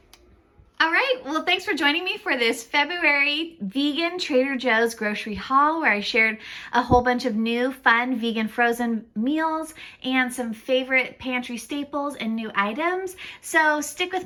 All right, well, thanks for joining me for this February vegan Trader Joe's grocery haul where I shared a whole bunch of new fun vegan frozen meals and some favorite pantry staples and new items. So stick with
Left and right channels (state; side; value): identical; both; correlation 1.00